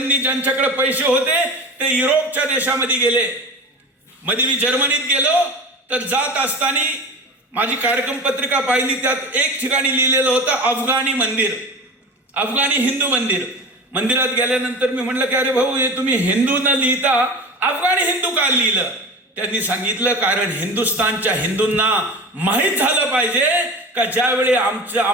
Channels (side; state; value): both; normal; correlation 0.32